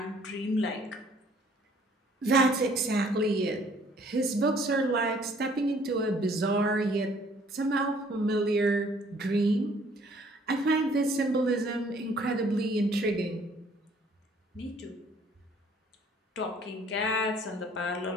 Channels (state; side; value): normal; both; correlation 0.59